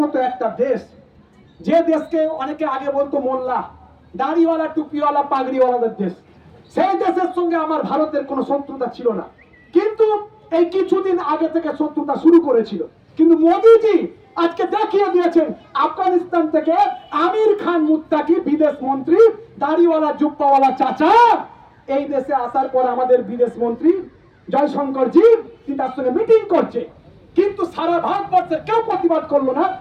মতো একটা দেশ, যে দেশকে অনেকে আগে বলতো মোল্লা, দাড়িওয়ালা, টুপিওয়ালা, পাগড়িওয়ালাদের দেশ। সেই দেশের সঙ্গে আমার ভারতের কোনো শত্রুতা ছিল না, কিন্তু এই কিছুদিন আগে থেকে শত্রুতা শুরু করেছিল। কিন্তু মোদিজি আজকে দেখিয়ে দিয়েছেন, আফগানিস্তান থেকে আমির খান মুত্তাকি বিদেশ মন্ত্রী, দাড়িওয়ালা জুব্বাওয়ালা চাচা, এই দেশে আসার পর আমাদের বিদেশ মন্ত্রী জয়শঙ্কর জি তার সঙ্গে মিটিং করছে, কিন্তু সারা ভারতবর্ষের কেউ প্রতিবাদ করলো না।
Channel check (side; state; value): both; identical; correlation 1.00